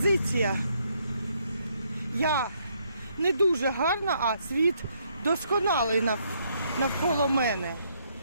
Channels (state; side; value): inverted; both; correlation -0.72